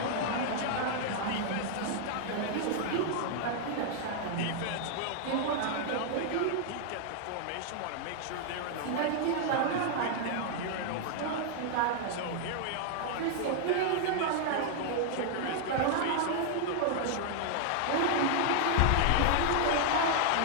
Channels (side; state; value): both; different; correlation 0.00